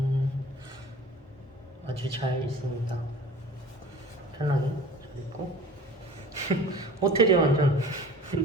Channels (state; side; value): normal; both; correlation 0.43